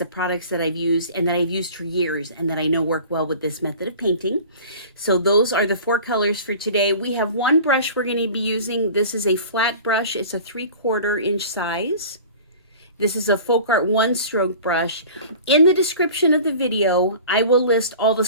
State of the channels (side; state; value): both; inverted; correlation -0.41